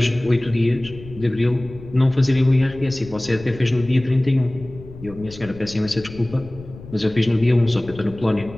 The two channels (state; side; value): noise; left; rumble, 17 dB below the sound